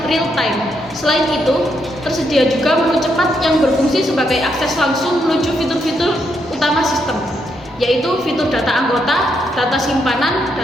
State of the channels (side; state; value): both; normal; correlation 0.78